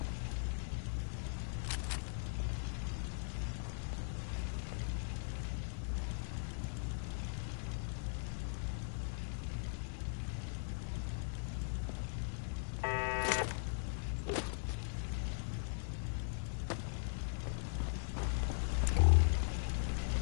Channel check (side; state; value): right; silent; digital silence